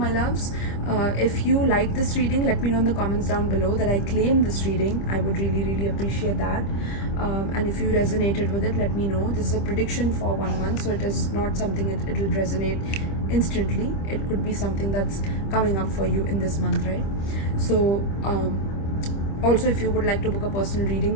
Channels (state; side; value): late; right; 25 ms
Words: loves. If you like this reading, let me know in the comments down below that I claim this reading. I would really, really appreciate that. And if you resonated with it, let me know. This is a prediction for 1 month, so it is not something it will resonate instantly. It could be something that's coming up for you in this month, right? So also, if you would like to book a personal